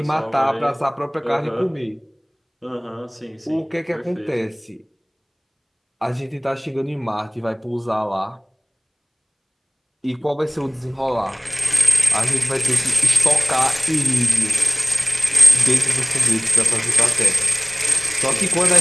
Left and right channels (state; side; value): identical; both; correlation 1.00